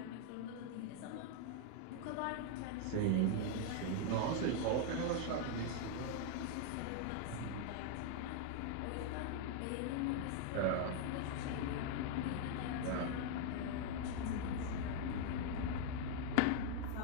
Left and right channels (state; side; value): different; both; correlation 0.00